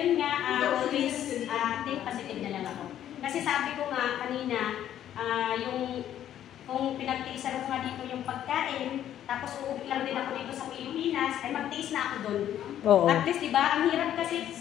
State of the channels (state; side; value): quieter; right; 11.1 dB